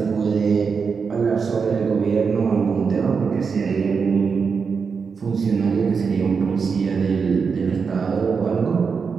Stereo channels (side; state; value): left; quieter; 5.6 dB